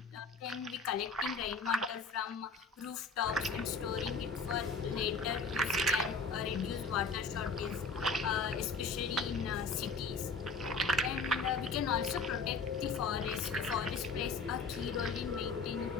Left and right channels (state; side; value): quieter; right; 4.2 dB